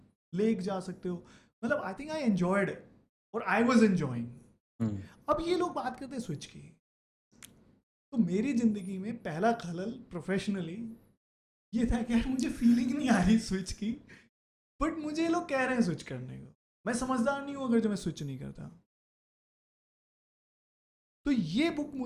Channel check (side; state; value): both; identical; correlation 1.00